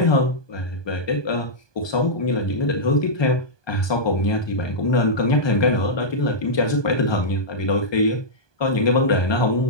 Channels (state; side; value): late; right; 1.2 ms